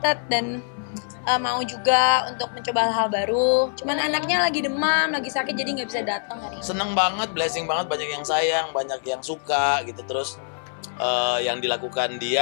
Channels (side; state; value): right; silent; 62 dB below the other